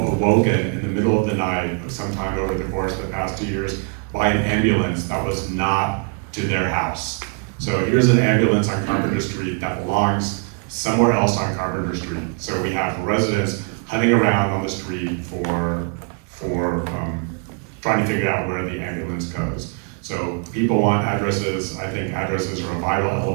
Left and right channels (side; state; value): left; quieter; 36.4 dB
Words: in the middle of the night, sometime over the course of the past 2 years, by an ambulance that was not to their house. So here's an ambulance on Carpenter Street that belongs somewhere else on Carpenter Street. So we have residents hunting around on the street for trying to figure out where the ambulance goes. So people want addresses. I think addresses are a vital